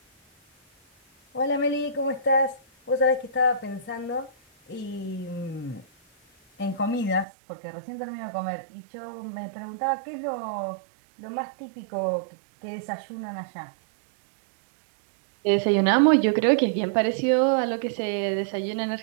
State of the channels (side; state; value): left; drops out; at 7.2 s